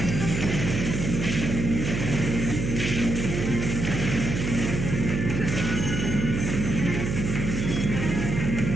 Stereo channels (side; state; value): right; noise; hum, 2 dB below the sound